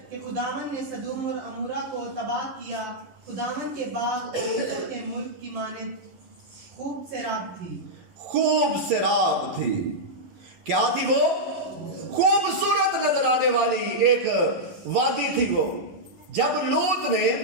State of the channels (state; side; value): late; left; 11 ms